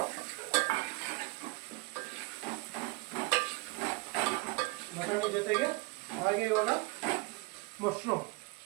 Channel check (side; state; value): left; quieter; 25.8 dB